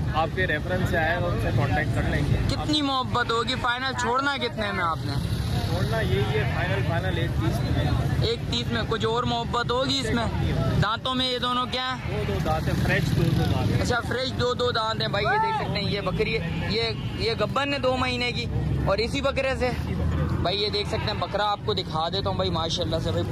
आपके रेफरेंस से आए उनसे कांटेक्ट कर लेंगे। कितनी मोहब्बत होगी? फाइनल छोड़ना कितने में आपने? छोड़ना यही है फाइनल 1,30 में। 1,30 में। कुछ और मोहब्बत होगी इसमें? दांतों में ये दोनों क्या है? 2 दांत है, फ्रेश 2 दांत है। अच्छा फ्रेश 2 दांत है भाई। ये देख सकते हैं ये बकरी है। ये गब्बन है 2 महीने की। और इसी बकरे से भाई ये देख सकते हैं बकरा आपको दिखा देता हूँ भाई। माशाल्लाह से भाई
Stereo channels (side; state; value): both; identical; correlation 1.00